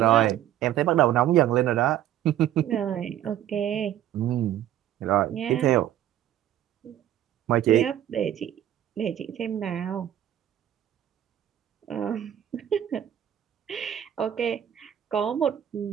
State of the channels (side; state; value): left; quieter; 11.5 dB